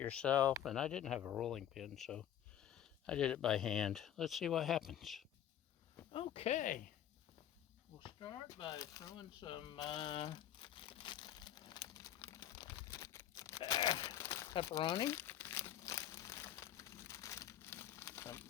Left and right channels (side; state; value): right; quieter; 10.8 dB